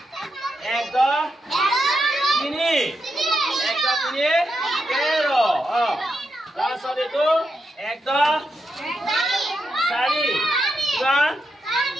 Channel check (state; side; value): normal; both; correlation 0.84